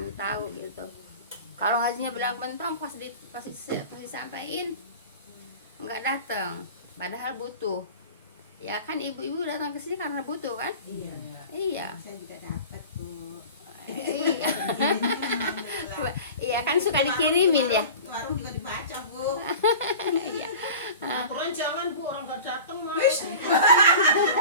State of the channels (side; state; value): both; inverted; correlation -0.37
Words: tahu gitu. Kalau ngajinya bilang bentong pasti sampaiin nggak datang, padahal butuh. Ya kan ibu-ibu datang ke sini karena butuh kan? Iya. Saya juga dapat Bu. Iya. Iya kan suka dikirimin ya. Warung juga dibaca Bu. Iya. Aturan jangan Bu, orang nggak datang mah.